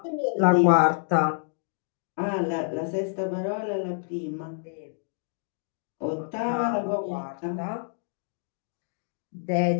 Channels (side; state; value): right; silent; digital silence